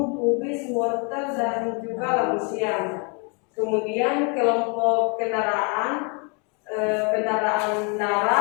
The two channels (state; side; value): quieter; right; 35.1 dB